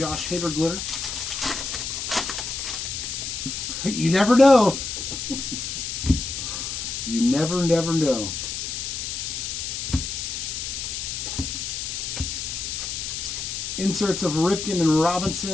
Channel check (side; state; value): left; noise; hiss, 4 dB below the sound